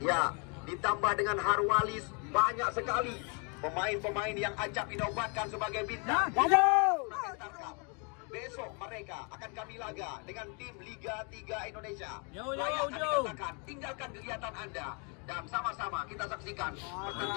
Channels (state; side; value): quieter; right; 35.3 dB